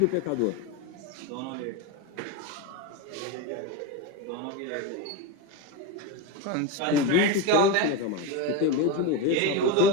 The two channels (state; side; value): different; both; correlation 0.06